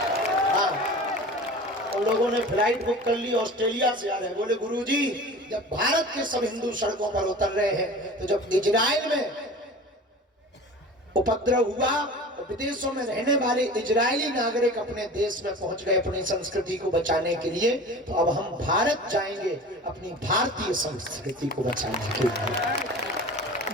हाँ, उन लोगों ने फ्लाइट बुक कर ली, ऑस्ट्रेलिया से आ रहे हैं। बोले गुरुजी जब भारत के सब हिंदू सड़कों पर उतर रहे हैं तो जब इजराइल में उपद्रव हुआ तो विदेशों में रहने वाले इजरायली नागरिक अपने देश में पहुंच गए अपनी संस्कृति को बचाने के लिए। तो अब हम भारत जाएंगे अपनी भारतीय संस्कृति को बचाने के लिए।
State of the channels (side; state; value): both; normal; correlation 0.37